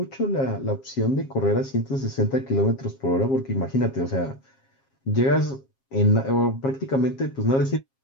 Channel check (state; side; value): late; right; 7.4 ms